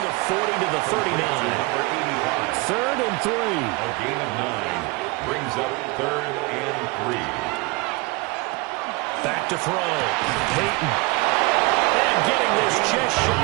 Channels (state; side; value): quieter; left; 25.3 dB